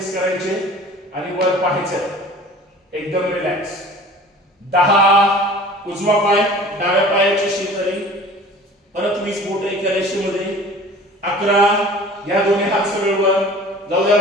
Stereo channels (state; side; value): normal; both; correlation 0.44